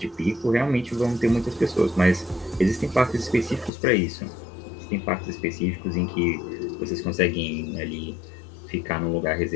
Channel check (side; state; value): right; drops out; at 3.7 s